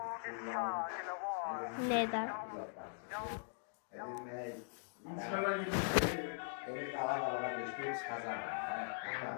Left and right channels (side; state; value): right; silent; digital silence